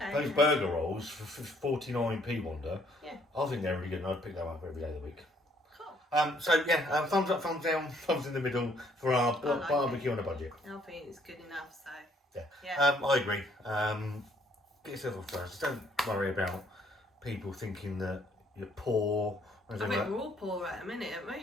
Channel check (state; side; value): normal; both; correlation 0.65